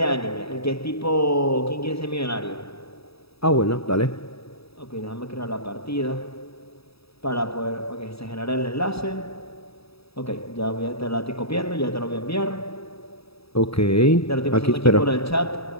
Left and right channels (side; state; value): right; late; 0.77 ms